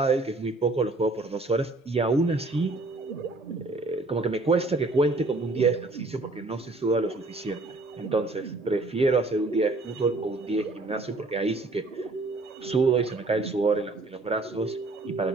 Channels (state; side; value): quieter; left; 3.0 dB